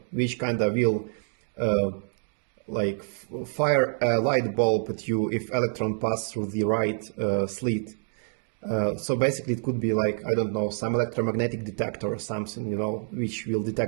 which kind of will like fire a light bulb at you if electron pass through the right slit. So basically it could be like, I don't know, some electromagnetic detector or something, you know, which will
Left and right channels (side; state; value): left; silent; 60 dB below the other